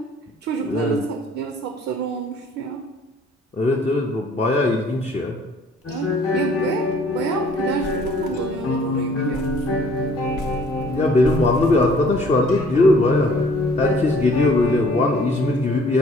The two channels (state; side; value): normal; both; correlation 0.57